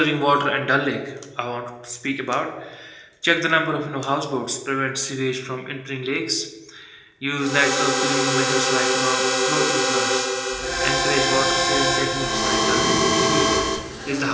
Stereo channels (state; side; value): identical; both; correlation 1.00